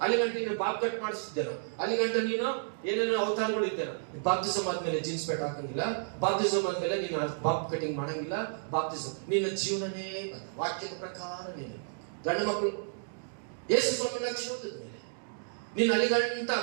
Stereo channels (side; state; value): left; silent; digital silence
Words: ಅಲ್ಲಿ ಗಂಟೆ ನೀನು ಬಾಬ್ ಕಟ್ ಮಾಡಿಸ್ತಿದ್ದೇನೋ, ಅಲ್ಲಿ ಗಂಟೆ ನೀನು ಏನೇನೋ ಅವತಾರಗಳು ಇದ್ದೇನೋ. ಬಾಪ್ತಿಸಮ್ ಆದ್ಮೇಲೆ ಜೀನ್ಸ್ ಪ್ಯಾಂಟ್ ಹಾಕಂಗಿಲ್ಲ, ಬಾಪ್ತಿಸಮ್ ಆದ್ಮೇಲೆ ನೀನು ಬಾಬ್ ಕಟಿಂಗ್ ಮಾಡಂಗಿಲ್ಲ. ಬಾಪ್ತಿಸಮ್ ನಿನ್ನ ಜೀವನನೇ ವಾಕ್ಯದ ಪ್ರಕಾರ ನೀನು ಗಂಡು ಮಕ್ಕಳು ಯೇಸು ಸ್ವಾಮಿ ರಕ್ಷಣೆ ಹೊಂದಿದ್ಮೇಲೆ ನೀನು ಅಲ್ಲಿ ಗಂಟ